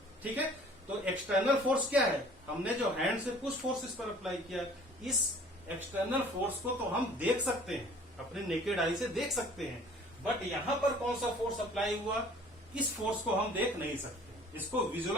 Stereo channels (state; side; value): normal; both; correlation 0.51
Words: ठीक है, तो एक्सटर्नल फोर्स क्या है, हमने जो हैंड से पुश फोर्स इस पर अप्लाई किया, इस एक्सटर्नल फोर्स को तो हम देख सकते हैं, अपने नेकेड आई से देख सकते हैं, बट यहां पर कौन सा फोर्स अप्लाई हुआ, इस फोर्स को हम देख नहीं सकते, इसको